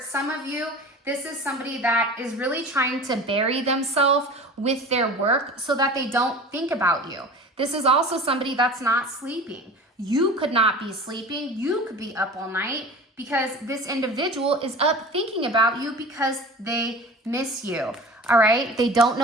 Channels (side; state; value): both; normal; correlation 0.37